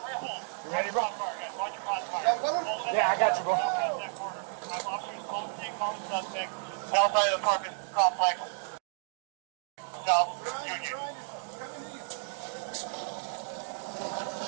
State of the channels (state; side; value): silent; left; 57 dB below the other